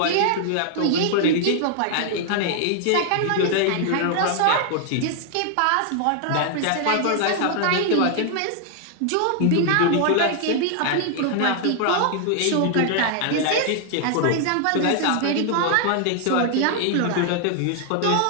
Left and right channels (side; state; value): both; different; correlation 0.00